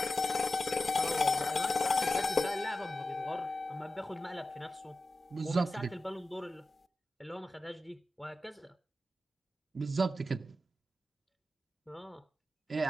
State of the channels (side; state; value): both; normal; correlation 0.92